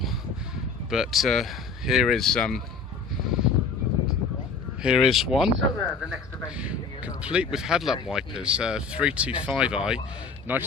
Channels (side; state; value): right; quieter; 4.8 dB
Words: but here is one, complete with headlamp wipers, 325i,